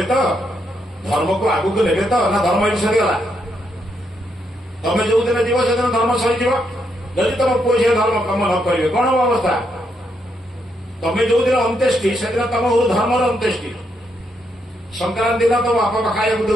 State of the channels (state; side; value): normal; both; correlation 0.78